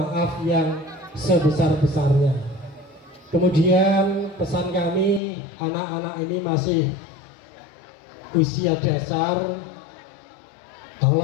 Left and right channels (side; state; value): right; drops out; at 5.2 s